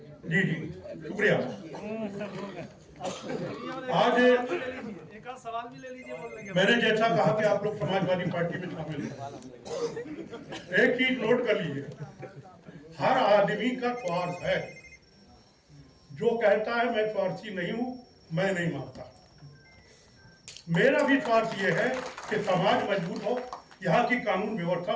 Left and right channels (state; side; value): identical; both; correlation 1.00